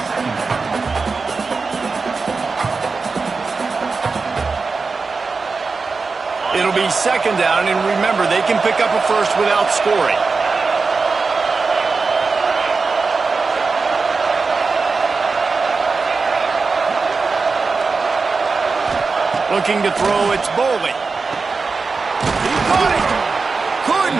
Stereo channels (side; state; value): left; quieter; 4.4 dB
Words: It'll be second down, and remember, they can pick up a first without scoring. Looking to throw, it's Bowling. He caught it.